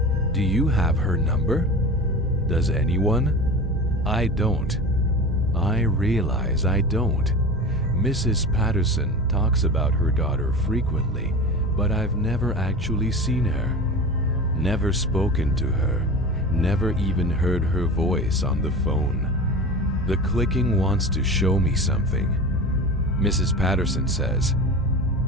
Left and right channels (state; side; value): normal; both; correlation 0.32